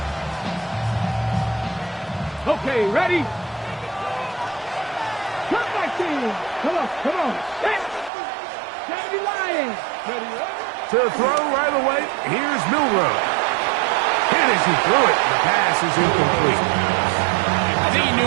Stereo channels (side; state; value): left; drops out; at 8.1 s